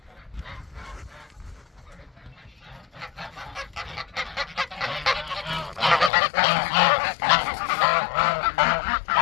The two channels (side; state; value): right; drops out; at 6.1 s